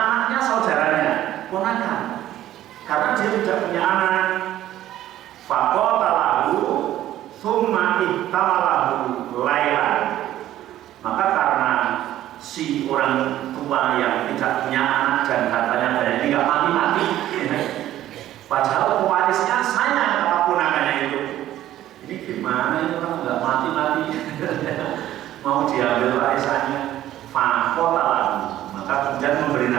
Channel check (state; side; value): quieter; left; 13.3 dB